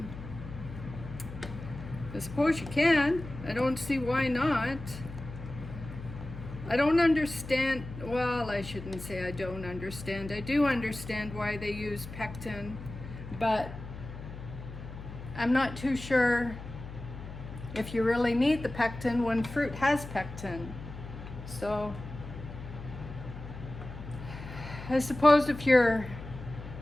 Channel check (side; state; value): left; noise; hum, 11 dB below the sound